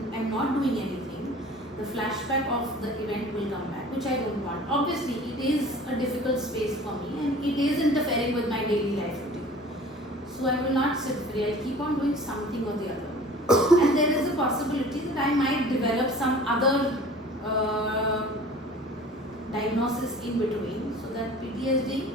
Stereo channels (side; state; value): both; normal; correlation 0.45